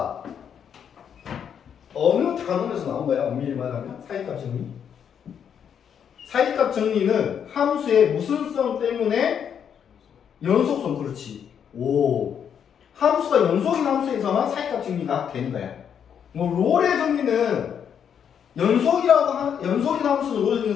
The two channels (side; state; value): right; quieter; 8.1 dB